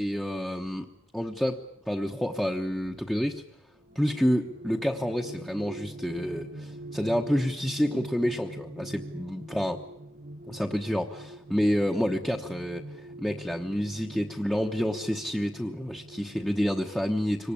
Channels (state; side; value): normal; both; correlation 0.95